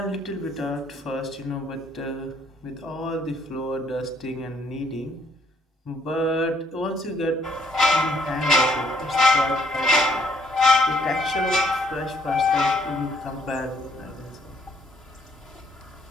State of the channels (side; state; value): both; normal; correlation 0.66